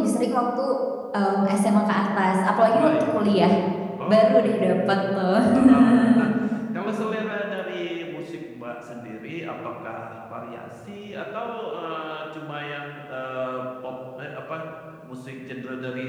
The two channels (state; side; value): identical; both; correlation 1.00